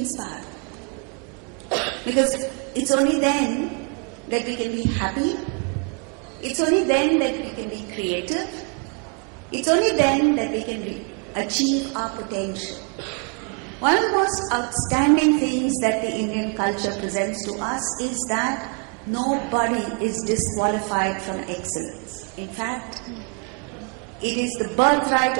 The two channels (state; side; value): quieter; left; 38.5 dB